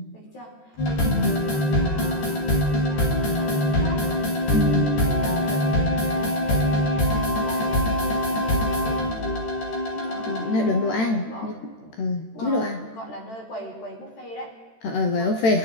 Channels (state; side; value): late; right; 13 ms